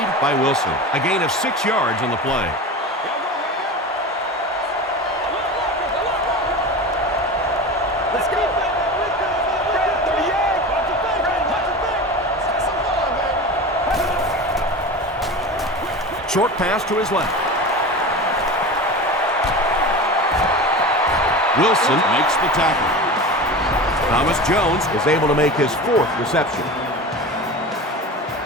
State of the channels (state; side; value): normal; both; correlation 0.30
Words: by Wilson. A gain of 6 yards on the play. Short pass to his left. Wilson makes the tackle. Thomas Jones is able to make his 4th reception.